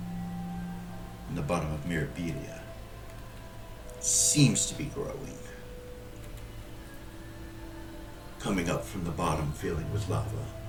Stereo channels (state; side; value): identical; both; correlation 1.00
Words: in the bottom of Mirabilia. It seems to be growing, coming up from the bottom, filling with lava.